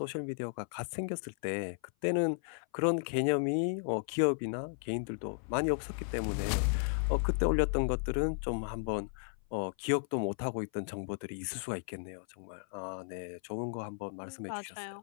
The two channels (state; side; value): silent; right; 55 dB below the other